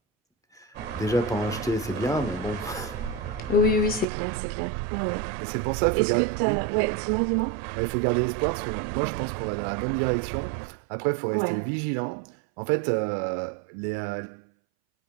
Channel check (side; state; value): left; drops out; at 4.0 s